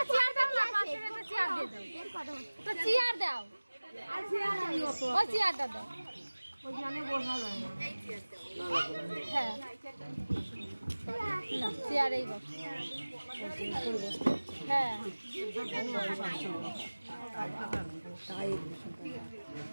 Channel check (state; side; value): inverted; both; correlation -1.00